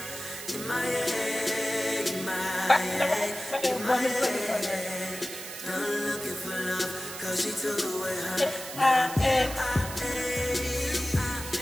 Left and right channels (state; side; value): noise; right; hiss, 10 dB below the sound